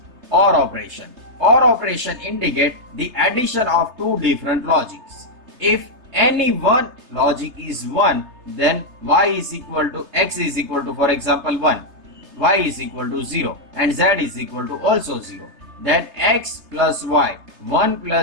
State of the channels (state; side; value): late; left; 3.3 ms